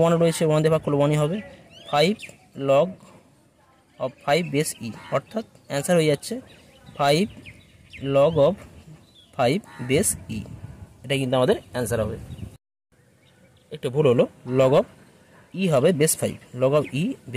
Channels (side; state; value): both; identical; correlation 1.00